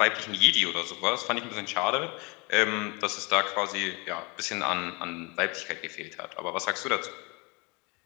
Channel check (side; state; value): right; quieter; 28.9 dB